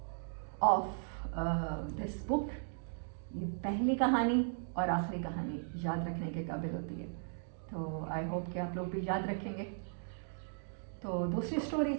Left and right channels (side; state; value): left; silent; digital silence